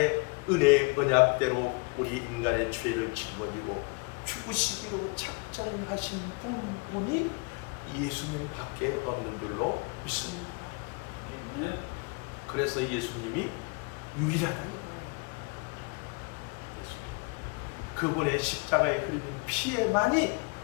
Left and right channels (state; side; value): quieter; right; 30.7 dB